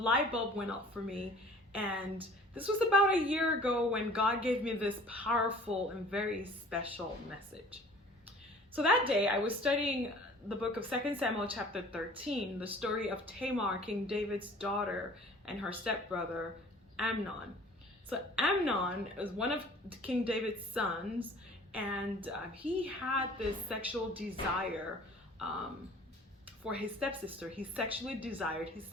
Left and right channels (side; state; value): both; normal; correlation 0.48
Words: bulb went off for me. And this was about a year ago when God gave me this powerful and very special message. So that day I was studying the book of 2 Samuel chapter 13, the story of Tamar, King David's daughter, and her stepbrother Amnon. So Amnon is one of King David's sons, and he had this sexual desire for his stepsister. He sexually desired his